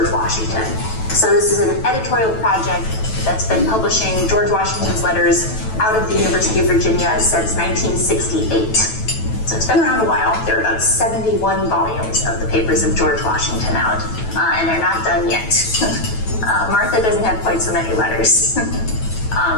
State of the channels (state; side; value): late; right; 9.1 ms